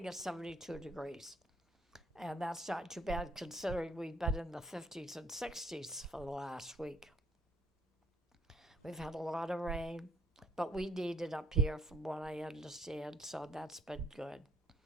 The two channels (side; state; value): both; normal; correlation 0.65